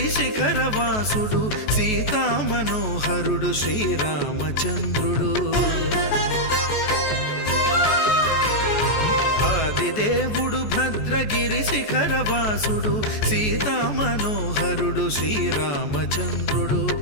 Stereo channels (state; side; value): late; right; 14 ms